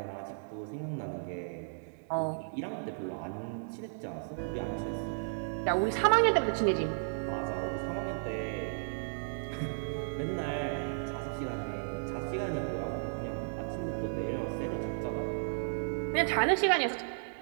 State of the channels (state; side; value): silent; left; digital silence